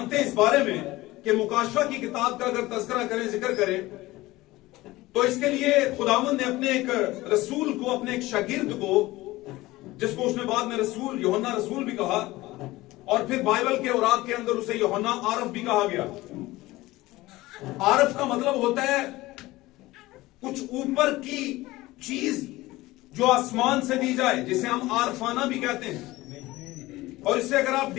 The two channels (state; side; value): quieter; right; 18.8 dB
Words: हैं इस बारे में कि मुकाशवा की किताब का अगर तज़किरा करें, जिक्र करें, तो इसके लिए खुदावंद ने अपने एक रसूल को, अपने एक शागिर्द को, जिसको उसने बाद में रसूल, यूहन्ना रसूल भी कहा, और फिर बाइबल के औरात के अंदर उसे यूहन्ना आरफ भी कहा गया। आरफ का मतलब होता है कुछ ऊपर की चीज जो आसमान से दी जाए, जिसे हम आरफाना भी कहते हैं। और इससे अगर आप